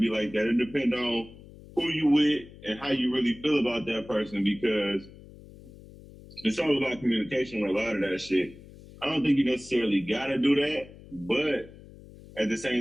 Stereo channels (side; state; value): left; noise; hum, 19 dB below the sound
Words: like that. It depends on who you with and how you really feel about that person, because it's all about communication with a lot of that shit. I don't think you necessarily gotta do that, but at the